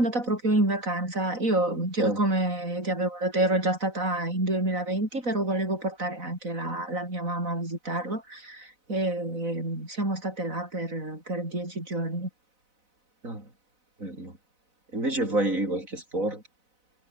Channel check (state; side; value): late; left; 4.0 ms